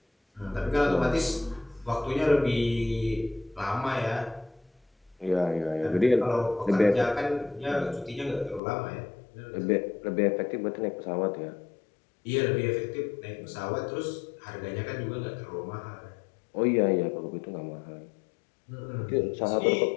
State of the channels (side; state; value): right; drops out; at 8.6 s